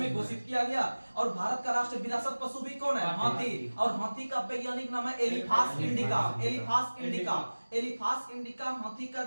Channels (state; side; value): inverted; both; correlation -1.00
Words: घोषित किया गया। और भारत का राष्ट्रीय विरासत पशु भी कौन है? हाथी। और हाथी का वैज्ञानिक नाम है एलिफास इंडिका, एलिफास इंडिका, एलिफास इंडिका हाथी का